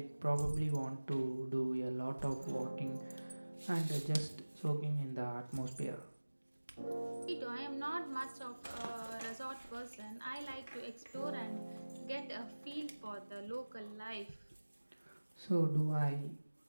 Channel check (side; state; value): both; inverted; correlation -1.00